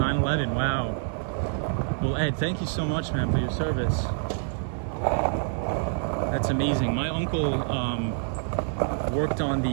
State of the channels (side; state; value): left; silent; 60 dB below the other